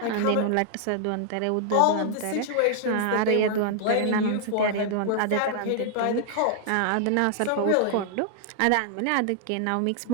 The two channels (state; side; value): different; both; correlation 0.00